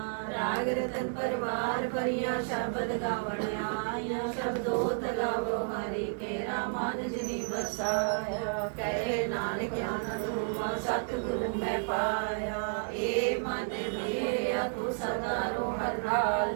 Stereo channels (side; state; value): left; silent; 57 dB below the other